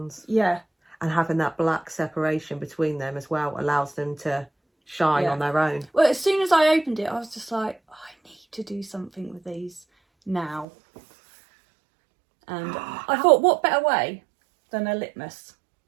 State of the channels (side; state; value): left; drops out; at 10.7 s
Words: Yeah. And having that black separation between them as well allows them to shine on their own. Well, as soon as I opened it I was just like, I need to do something with these now. And I thought, what better way than a litmus?